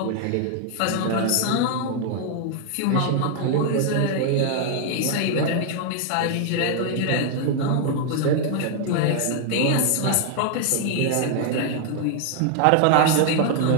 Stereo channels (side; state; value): both; different; correlation 0.00